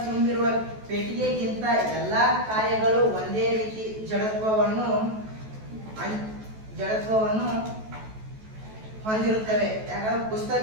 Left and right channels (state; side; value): late; left; 14 ms